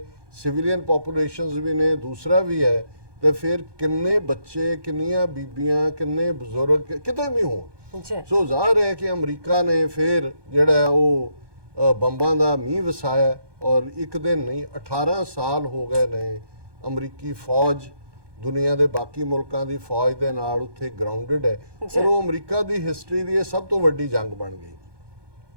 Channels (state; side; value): late; left; 1.2 ms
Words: ਸਿਵਿਲੀਅਨ ਪੋਪੂਲੇਸ਼ਨਸ ਵੀ ਨੇ, ਦੂਸਰਾ ਵੀ ਹੈ, ਤੇ ਫਿਰ ਕਿੰਨੇ ਬੱਚੇ, ਕਿੰਨੀਆਂ ਬੀਬੀਆਂ, ਕਿੰਨੇ ਬਜ਼ੁਰਗ ਕਿਤੇ ਵੀ ਹੋਣ। ਸੋ ਜ਼ਾਹਰ ਹੈ ਕਿ ਅਮਰੀਕਾ ਨੇ ਫਿਰ ਜਿਹੜਾ ਉਹ ਬੰਬਾਂ ਦਾ ਮੀਂਹ ਵਸਾਇਆ ਔਰ ਇੱਕ ਦਿਨ ਨਹੀਂ 18 ਸਾਲ ਹੋ ਗਏ ਨੇ ਅਮਰੀਕੀ ਫੌਜ ਦੁਨੀਆ ਦੇ ਬਾਕੀ ਮੁਲਕਾਂ ਦੀ ਫੌਜ ਦੇ ਨਾਲ ਉੱਥੇ ਗਰਾਊਂਡਡ ਹੈ ਔਰ ਉਹ ਅਮਰੀਕਾ ਦੀ ਹਿਸਟਰੀ ਦੀ ਇਹ ਸਭ ਤੋਂ ਵੱਡੀ ਜੰਗ ਬਣ ਗਈ।